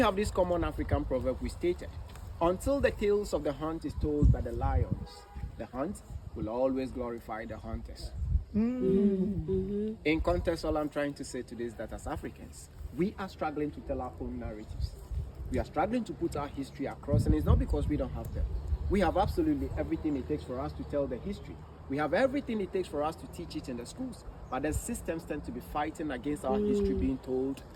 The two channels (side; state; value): both; identical; correlation 1.00